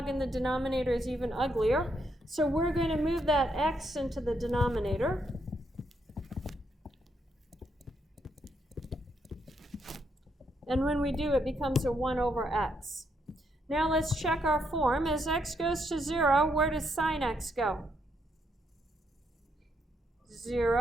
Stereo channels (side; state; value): both; normal; correlation 0.76